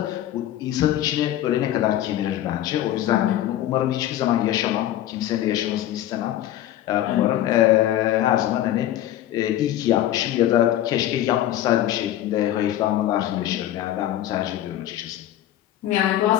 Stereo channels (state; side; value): quieter; right; 12.8 dB